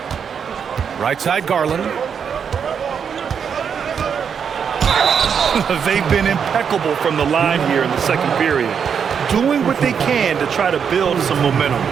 Right side, Garland. They've been impeccable from the line here in the second period, doing what they can to try to build some momentum.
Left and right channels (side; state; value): left; quieter; 7.1 dB